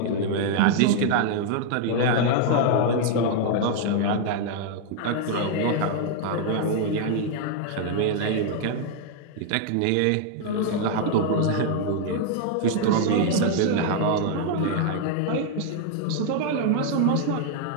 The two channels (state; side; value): different; both; correlation 0.00